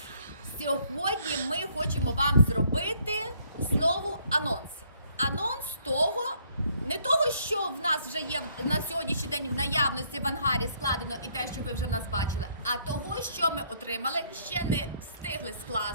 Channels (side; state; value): both; inverted; correlation -0.66